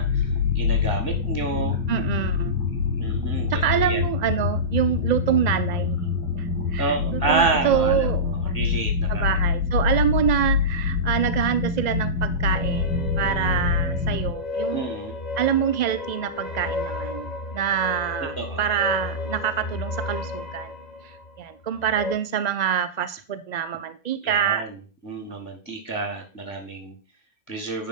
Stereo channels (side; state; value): right; late; 2.0 ms